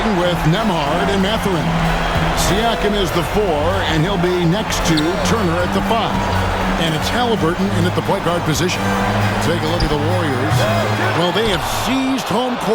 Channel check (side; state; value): both; identical; correlation 1.00